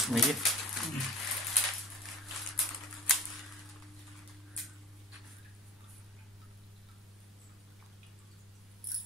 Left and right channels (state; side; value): normal; both; correlation 0.41